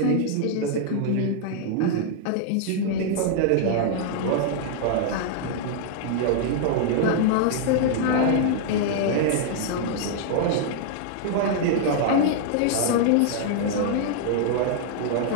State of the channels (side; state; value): both; different; correlation -0.01